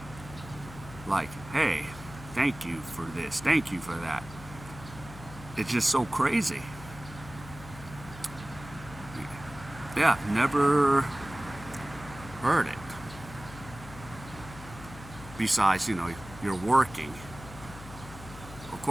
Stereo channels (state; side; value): noise; left; hum, 15 dB below the sound